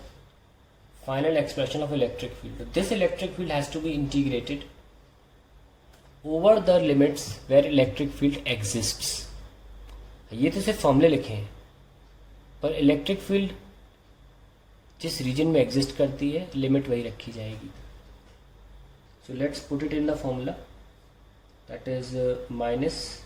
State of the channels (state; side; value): identical; both; correlation 1.00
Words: final expression of electric field. This electric field has to be integrated over the limits where electric field exists. ये तो सिर्फ फॉर्मूले लिखे हैं, पर इलेक्ट्रिक फील्ड जिस रीजन में एग्जिस्ट करती है लिमिट वही रखी जाएगी। So let's put it in the formula, that is minus